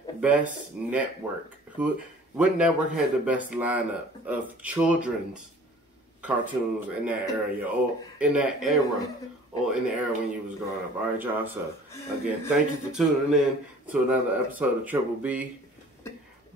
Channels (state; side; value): normal; both; correlation 0.49